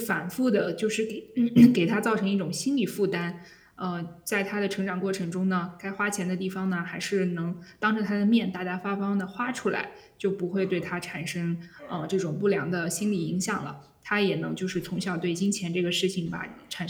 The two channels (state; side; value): identical; both; correlation 1.00